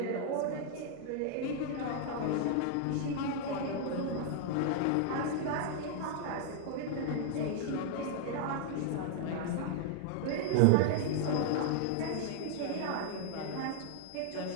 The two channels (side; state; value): both; different; correlation 0.00